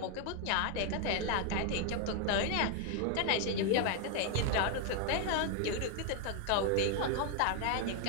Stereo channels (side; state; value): both; different; correlation 0.00